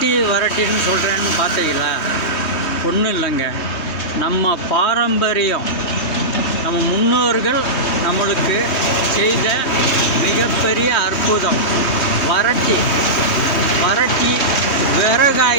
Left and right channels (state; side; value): late; right; 2.2 ms